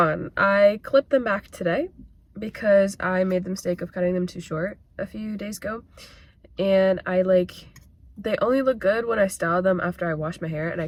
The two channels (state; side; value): identical; both; correlation 1.00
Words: I clipped them back today because I made the mistake of cutting them too short a few days ago, and they only look good when I style them after I wash my hair, and I